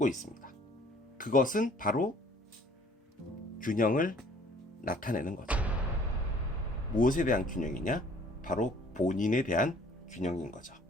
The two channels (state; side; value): normal; both; correlation 0.56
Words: 있습니다. 그것은 바로 균형을 나타내는 거죠. 무엇에 대한 균형이냐? 바로 본인에 대한 균형인 거죠.